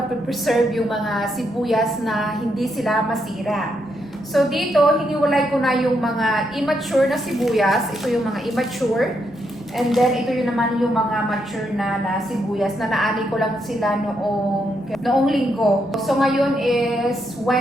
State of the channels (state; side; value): normal; both; correlation 0.79